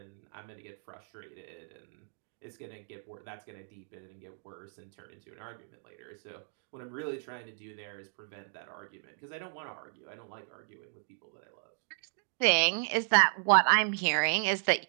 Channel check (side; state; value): left; silent; 55 dB below the other